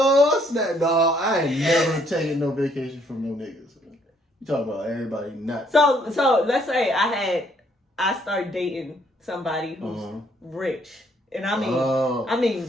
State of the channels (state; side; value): normal; both; correlation 0.67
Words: snap! No, I ain't never taking no vacation from no niggas. You talking about everybody not? So let's say I start dating somebody who's rich, and I